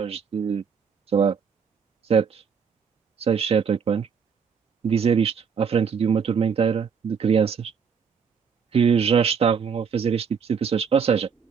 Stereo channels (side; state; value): left; quieter; 6.5 dB